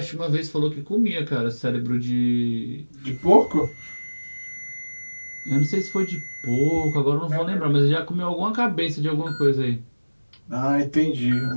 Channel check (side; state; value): both; inverted; correlation -1.00